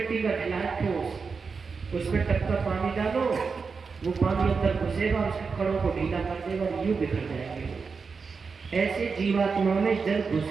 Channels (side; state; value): left; quieter; 5.1 dB